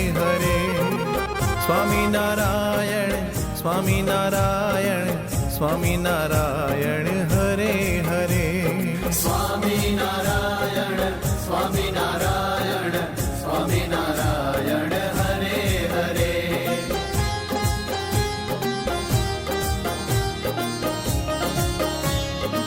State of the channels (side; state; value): both; identical; correlation 1.00